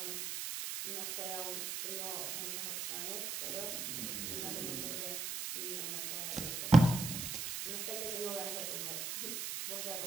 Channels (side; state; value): right; noise; hiss, 3 dB below the sound